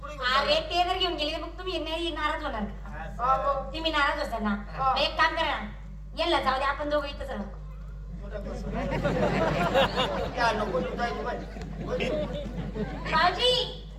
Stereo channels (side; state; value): both; identical; correlation 1.00